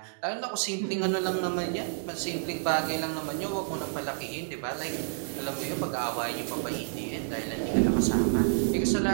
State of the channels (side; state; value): left; silent; digital silence